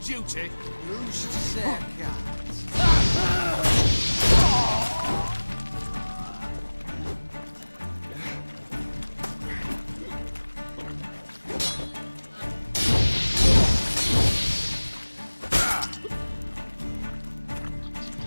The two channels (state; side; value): inverted; both; correlation -1.00